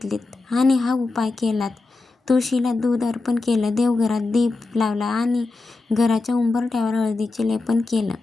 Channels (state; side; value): quieter; right; 3.4 dB